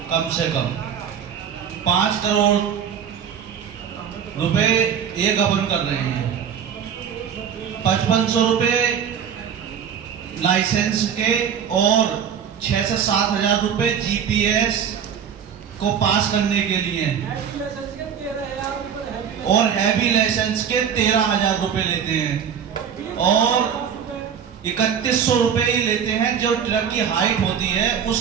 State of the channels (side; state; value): left; quieter; 8.0 dB